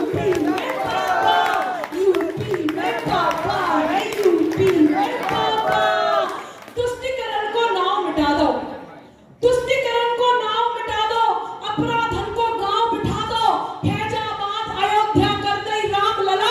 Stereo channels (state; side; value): identical; both; correlation 1.00